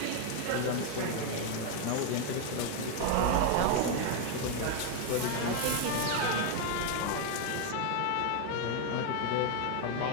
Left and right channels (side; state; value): both; different; correlation 0.01